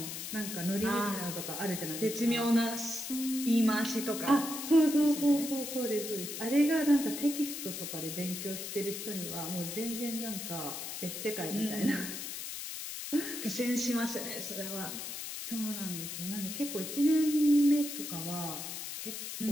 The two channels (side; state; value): left; noise; hiss, 7 dB below the sound